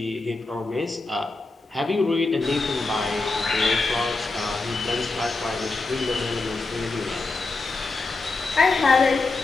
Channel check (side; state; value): right; quieter; 3.5 dB